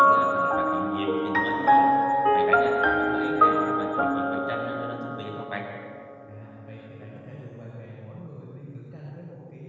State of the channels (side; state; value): both; identical; correlation 1.00